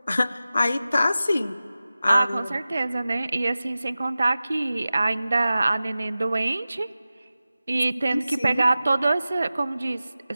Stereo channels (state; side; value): inverted; both; correlation -0.95